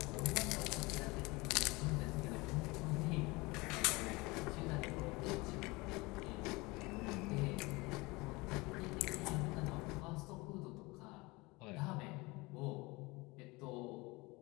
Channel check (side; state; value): right; quieter; 23.8 dB